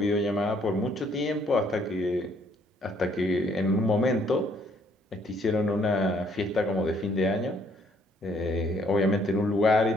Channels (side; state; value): both; normal; correlation 0.66